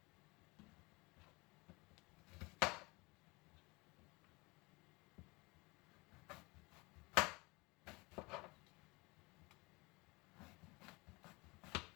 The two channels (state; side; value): quieter; right; 25.7 dB